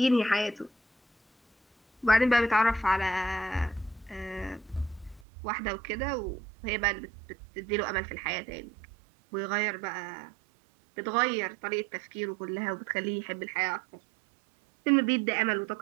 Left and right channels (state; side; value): drops out; left; at 5.2 s